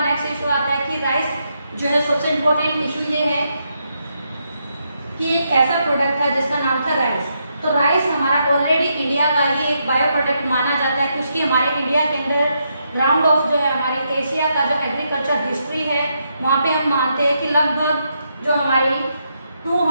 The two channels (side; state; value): both; inverted; correlation -0.80